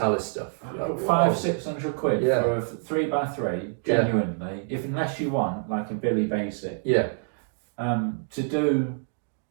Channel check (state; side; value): silent; left; digital silence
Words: stuff. Like, 500-600 quid for a 3x3, genuinely. Unless you want like a Billy Basic. Yeah. To do,